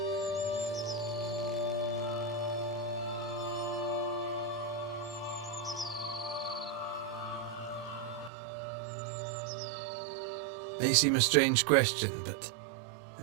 May seem a strange question, but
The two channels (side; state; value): left; drops out; at 8.3 s